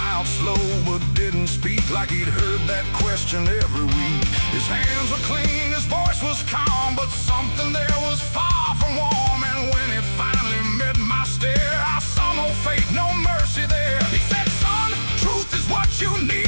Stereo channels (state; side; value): inverted; both; correlation -1.00